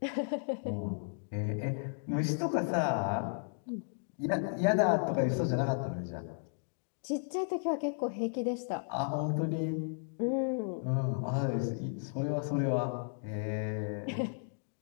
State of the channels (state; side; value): silent; right; digital silence